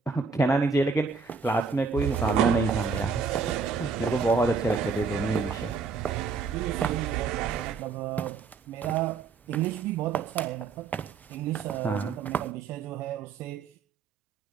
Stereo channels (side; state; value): left; quieter; 5.0 dB